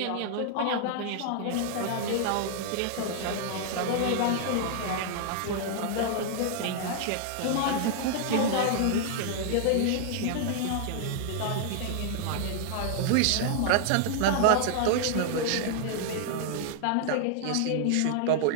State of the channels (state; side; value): different; both; correlation 0.00